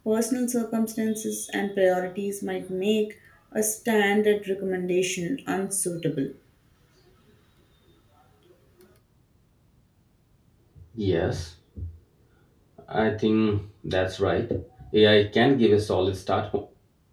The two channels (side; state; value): both; identical; correlation 1.00